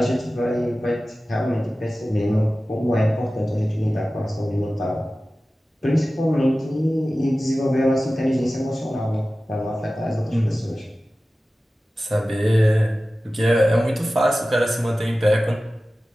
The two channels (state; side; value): normal; both; correlation 0.96